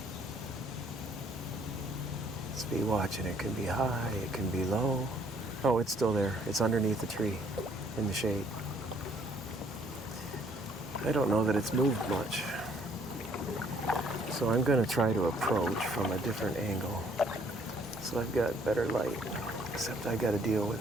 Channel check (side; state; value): both; normal; correlation 0.63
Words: Let's be watching. It can be high, it can be low. Oh, it's still there. It's underneath the tree in the shade. I don't know that it's moved much. So I'm going to try to approach from a different angle. So I've got better light, except I got to deal